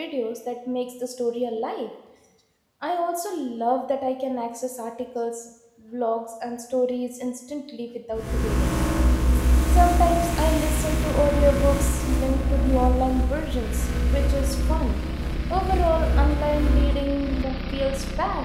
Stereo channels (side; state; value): both; identical; correlation 1.00